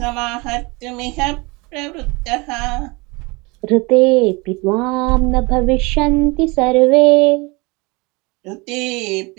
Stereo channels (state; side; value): quieter; left; 26.2 dB